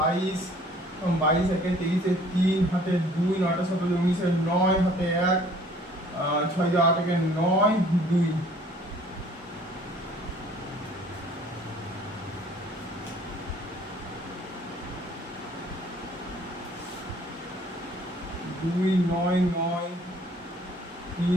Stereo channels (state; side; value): normal; both; correlation 0.55